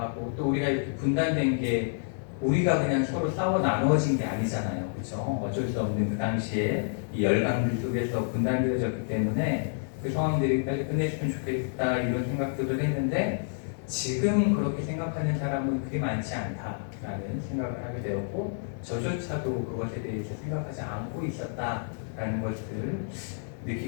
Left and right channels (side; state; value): right; silent; digital silence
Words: 또 우리가 이렇게 분단된 게 우리가 그냥 서로 싸워 나누어진 게 아니잖아요. 그렇죠? 어쩔 수 없는 그 당시에 이 열강들 속에서 분단되어졌기 때문에 그 상황들이 빨리 끝냈으면 좋겠다 이런 생각들을 했는데 지금 그렇게 생각하는 사람은 그리 많지 않다라는 생각을 하게 되었고 저조차도 그것에 대해서 생각하지 않고 있었다라는 것을